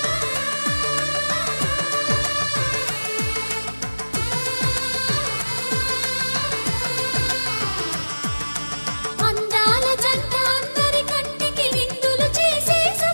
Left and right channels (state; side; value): inverted; both; correlation -1.00